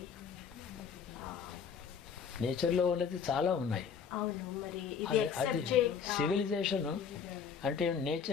నేచర్లో ఉన్నది చాలా ఉన్నాయి. అవును, మరి అది సివిలైజేషన్ అంటే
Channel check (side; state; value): right; quieter; 6.8 dB